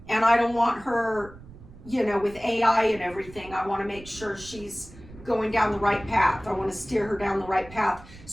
And I don't want her, with AI and everything, I want to make sure she's going down the right path. I want to steer her down the right path.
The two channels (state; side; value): noise; right; rumble, 19 dB below the sound